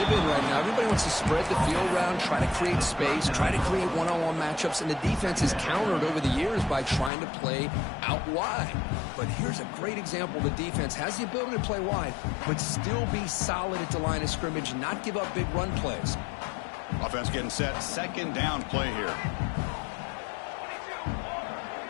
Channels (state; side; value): drops out; right; at 7.1 s